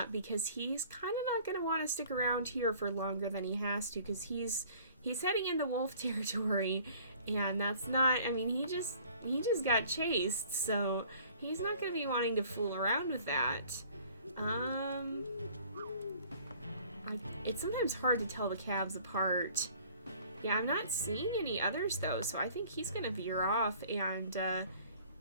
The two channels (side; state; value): both; inverted; correlation -0.53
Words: because he's kind of not going to want to stick around here for longer than he has to, because he's heading into wolf territory, and that's not, I mean, he just got chased, so he's not going to be wanting to fool around with that. It's sometimes hard to tell the calves apart. Yeah, I'm not seeing any others, though, so I think he's going to veer off, and,